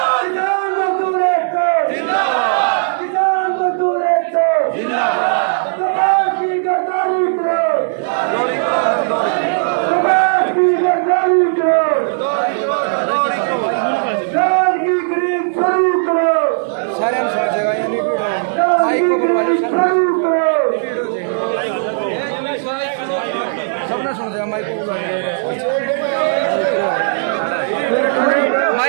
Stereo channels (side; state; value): left; silent; 62 dB below the other